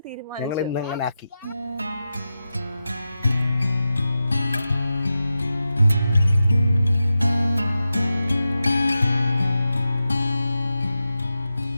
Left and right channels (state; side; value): inverted; both; correlation -0.92